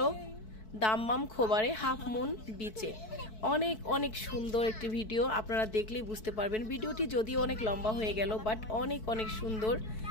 দাম্মাম খোবারে হাফ মুন বিচে। অনেক অনেক সুন্দর একটি ভিডিও, আপনারা দেখলেই বুঝতে পারবেন। ভিডিওটি যদিও অনেক লম্বা হয়ে গেল বাট অনেক অনেক সুন্দর।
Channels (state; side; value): late; right; 4.6 ms